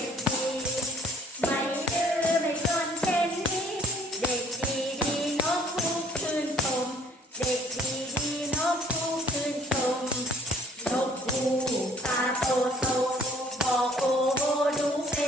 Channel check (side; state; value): both; normal; correlation 0.58